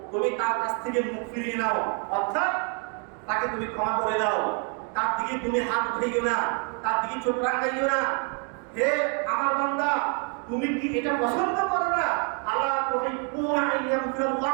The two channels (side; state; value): left; quieter; 39.6 dB